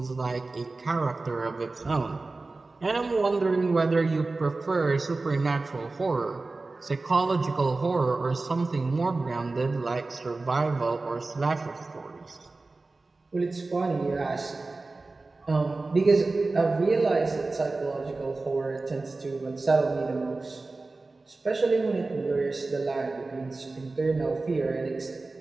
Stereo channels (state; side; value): quieter; left; 3.4 dB